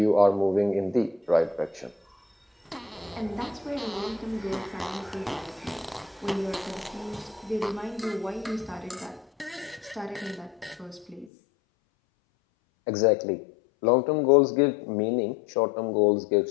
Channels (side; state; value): right; drops out; at 11.3 s